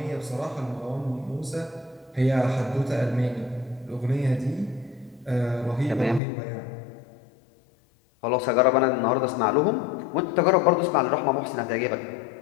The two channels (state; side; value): drops out; right; at 6.2 s